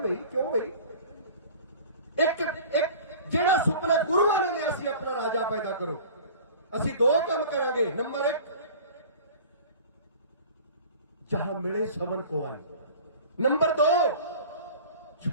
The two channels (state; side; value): inverted; both; correlation -0.42